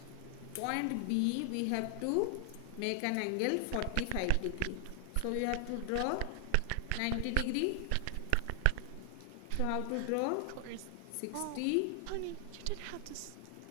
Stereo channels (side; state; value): both; different; correlation 0.00